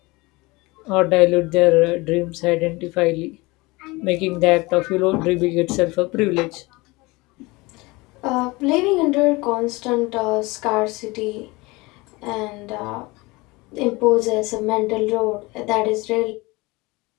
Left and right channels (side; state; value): right; quieter; 23.3 dB